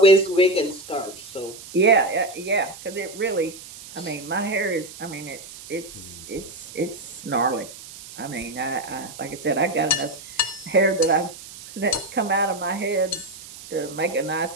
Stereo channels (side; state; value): right; noise; hiss, 16 dB below the sound